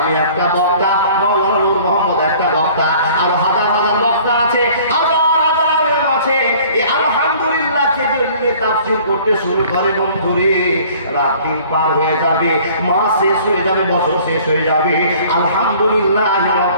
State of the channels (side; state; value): both; inverted; correlation -0.52